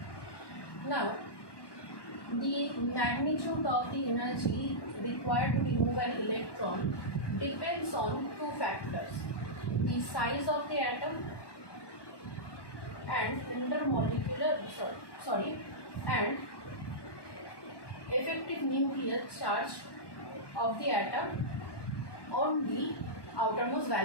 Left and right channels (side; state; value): right; late; 1.1 ms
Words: Now, the magnitude of the energy required to remove an electron depends on two factors: the size of the atom and and effective nuclear charge of the atom on the outermost